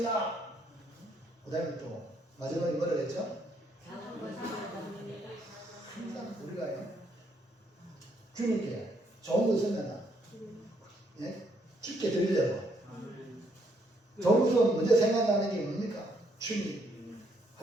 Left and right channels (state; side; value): normal; both; correlation 0.71